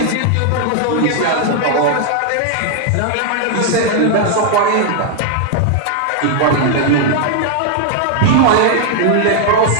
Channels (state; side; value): different; both; correlation 0.00